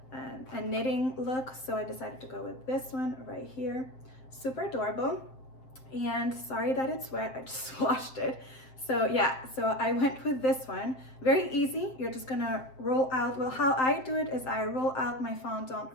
knitting look, so I decided to go with this one right here. Super adorable. And sorry that it's wet, I just washed it. So yeah, so I went with this one. Very easy. You're just gonna roll out, well, how I do it is I roll out my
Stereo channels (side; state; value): right; late; 7.7 ms